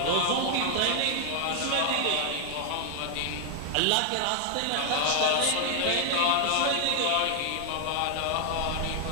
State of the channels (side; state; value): both; different; correlation 0.00